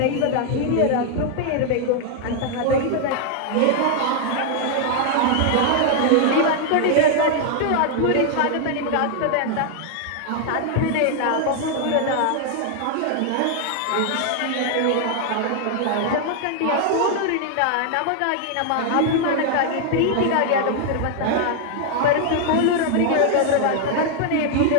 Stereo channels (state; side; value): different; both; correlation 0.00